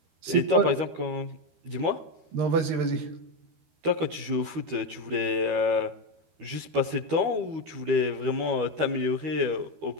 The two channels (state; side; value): late; left; 12 ms